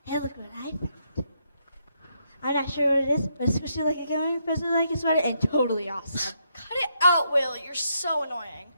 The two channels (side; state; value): both; inverted; correlation -0.77